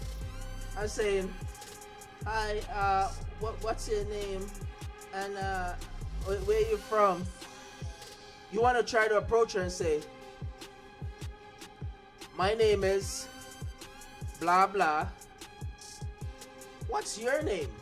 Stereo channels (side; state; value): both; identical; correlation 1.00